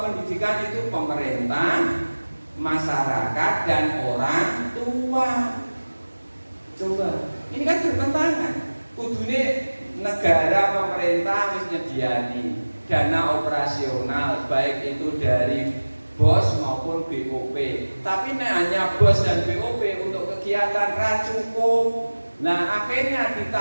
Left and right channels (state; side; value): inverted; both; correlation -1.00